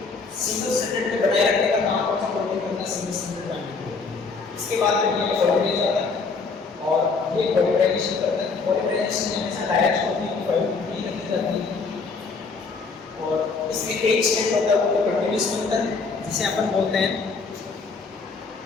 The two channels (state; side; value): quieter; right; 4.5 dB